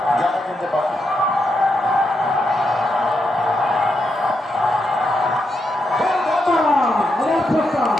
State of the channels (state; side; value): normal; both; correlation 0.83